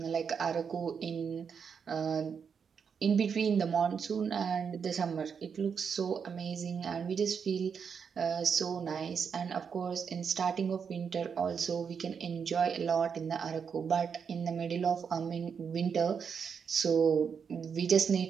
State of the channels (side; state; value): left; quieter; 6.5 dB